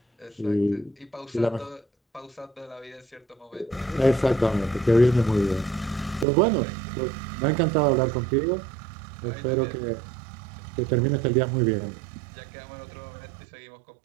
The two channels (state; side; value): drops out; left; at 6.2 s